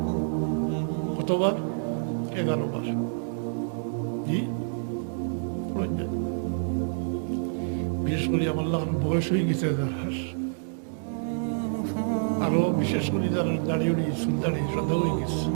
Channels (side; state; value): left; silent; digital silence